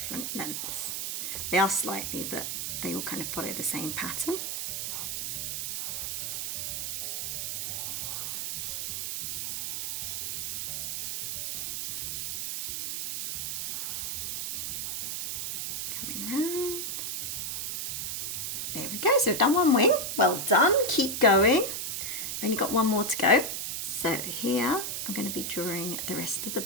lengths. They are slightly, but they all kind of follow the same pattern. There we go, so we've done one wing. Well done, keep going. We've only got one more to go. So here I'm going to be drawing the rest of the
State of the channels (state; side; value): noise; right; hiss, 2 dB below the sound